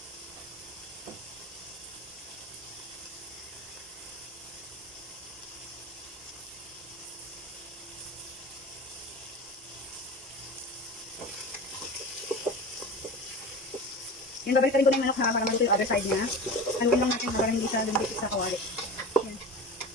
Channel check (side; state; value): both; normal; correlation 0.31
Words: Yan, babalik rin ko na yung manok ha, para maluto yung other side niya. Haluin lang natin para hindi siya lumipit sa kawali. Yan.